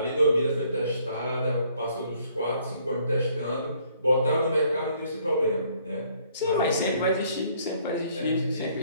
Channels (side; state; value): both; inverted; correlation -0.64